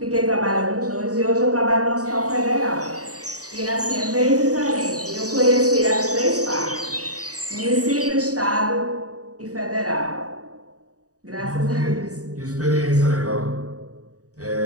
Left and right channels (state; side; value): late; left; 0.66 ms